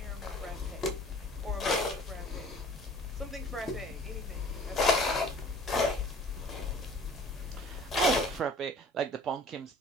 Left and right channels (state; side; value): normal; both; correlation 0.49